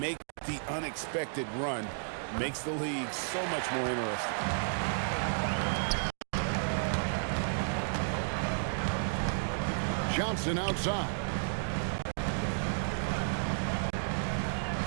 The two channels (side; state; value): left; silent; digital silence